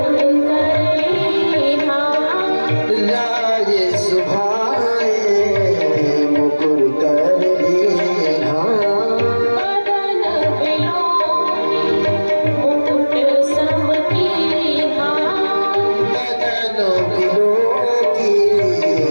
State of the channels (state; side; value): inverted; both; correlation -1.00